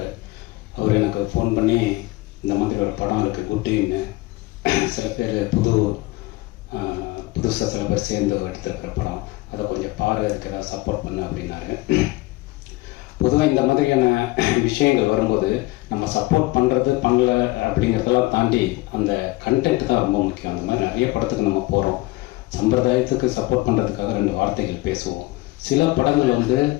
அவர் எனக்கு ஃபோன் பண்ணி இந்த மாதிரி ஒரு படம் இருக்குது குட்டின்னு, சில பேர் புதுசாக சில பேர் சேர்ந்து எடுத்துருக்கிற படம், அதை கொஞ்சம் பாரு, அதுக்கு ஏதாவது சப்போர்ட் பண்ணு அப்படின்னாரு. பொதுவாக இந்த மாதிரியான விஷயங்கள் வரும்போது நம்ம சப்போர்ட் பண்ணுறது பண்ணல அப்படிங்கிறதெல்லாம் தாண்டி அந்த கண்டென்ட் தான் ரொம்ப முக்கியம். அந்த மாதிரி நிறைய படத்துக்கு நம்ம போகிறோம், சம்பிரதாயத்துக்கு சப்போர்ட் பண்ணுறதுக்காக 2 வார்த்தைகள் பேசுவோம். சில படங்கள் வந்து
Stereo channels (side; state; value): right; quieter; 20.9 dB